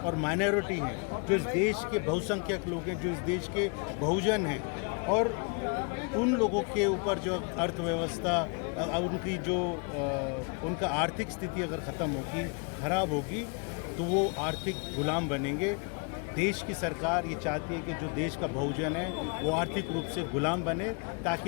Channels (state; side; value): quieter; right; 35.5 dB